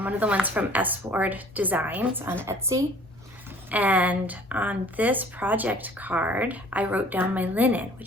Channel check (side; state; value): right; noise; rumble, 28 dB below the sound